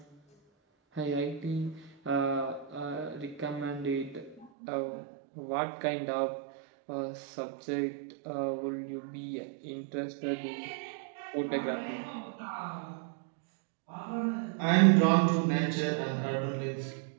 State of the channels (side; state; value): left; drops out; at 4.5 s